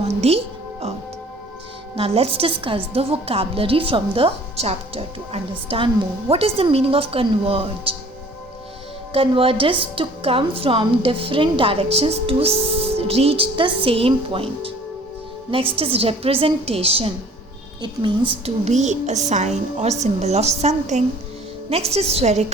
the earth. Now let's discuss the vocabulary from the chapter to understand more. What is the meaning of converge? Converge is to come from different directions to reach the same point. Next is representation. It means to be a sign or symbol of something. Next is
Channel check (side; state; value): both; normal; correlation 0.52